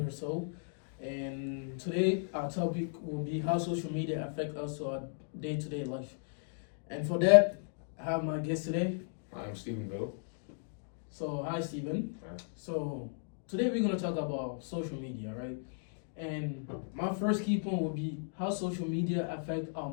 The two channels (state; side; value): silent; right; digital silence